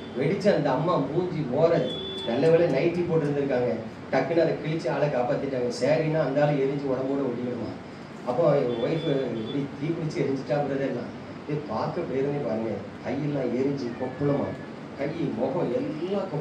வெடிச்சு அந்த அம்மா மூஞ்சி ஓர, நல்ல வேலை நைட்டி போட்டு இருந்திருக்காங்க, டக்குன்னு அதை கிழிச்சு ஆளை காப்பாத்திட்டாங்க. சரின்னா அந்த ஆளை எரிஞ்சு உடம்போட ஒட்டிக்கணுமா. அப்போ என் ஒய்ஃபு இப்படி தீ பிடிச்சி எரிஞ்சிட்டா பிரதர்லாம் பார்க்க பேருனே பாருங்க, கையெல்லாம் எரிஞ்சு கொப்பளமா, கை முகம் எல்லாம்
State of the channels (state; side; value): identical; both; correlation 1.00